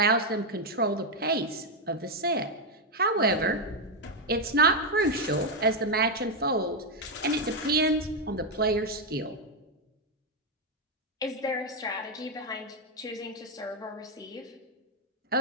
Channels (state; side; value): normal; both; correlation 0.03